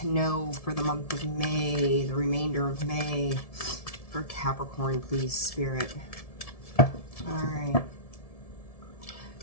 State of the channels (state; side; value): late; right; 1.7 ms